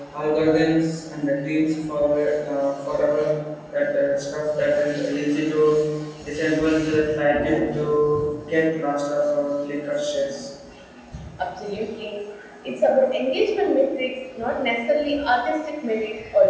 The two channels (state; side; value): identical; both; correlation 1.00